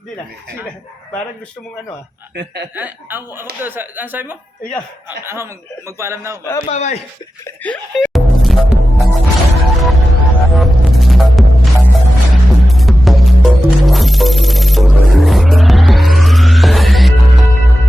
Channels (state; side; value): normal; both; correlation 0.92